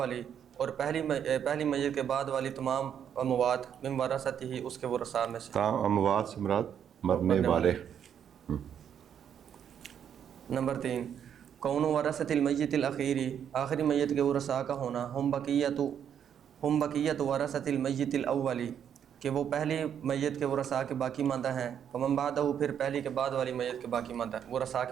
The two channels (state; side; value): quieter; left; 8.7 dB